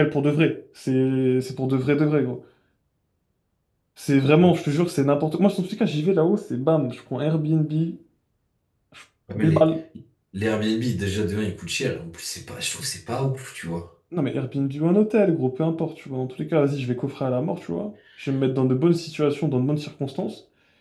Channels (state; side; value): identical; both; correlation 1.00